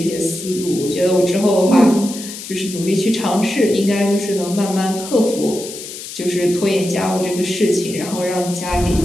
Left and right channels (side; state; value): left; noise; hiss, 11 dB below the sound